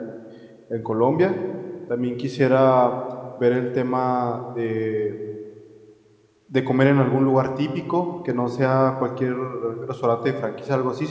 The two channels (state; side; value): identical; both; correlation 1.00